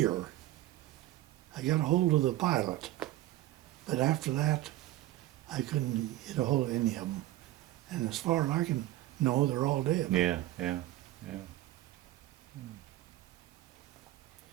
I got a hold of the pilot, But after that, I couldn't get a hold of any of them. And as far as I can know, they're all dead. Yeah.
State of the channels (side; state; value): left; quieter; 15.6 dB